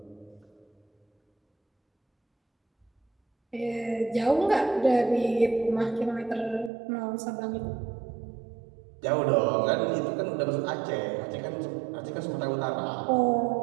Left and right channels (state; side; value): drops out; left; at 6.7 s